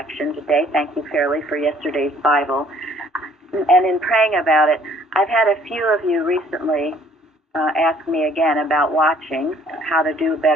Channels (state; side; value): normal; both; correlation 0.59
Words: today. Thank you, Fairley, for yesterday's Bible. And in praying about it, I've had a few of you recently ask me again about watching, how to do